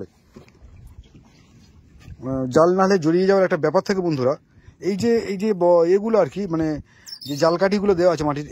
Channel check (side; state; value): both; identical; correlation 1.00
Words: জাল নাহলে জড়িয়ে যাওয়ার একটা ব্যাপার থাকে বন্ধুরা। এই যে এগুলো আর কি, মানে যে জাল কাঠিগুলো দেওয়া আছে মাটির,